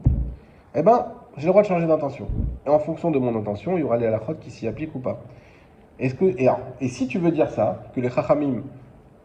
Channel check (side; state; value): both; identical; correlation 1.00